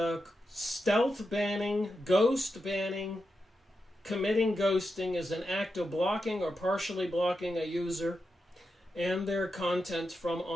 stealth banning, ghost banning. Committing ghosting is an act of blocking or partially blocking a user and their content from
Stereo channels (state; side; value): normal; both; correlation 0.88